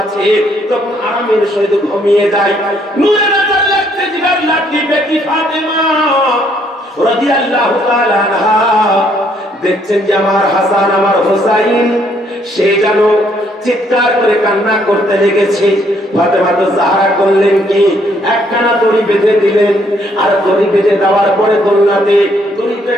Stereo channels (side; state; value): both; normal; correlation 0.68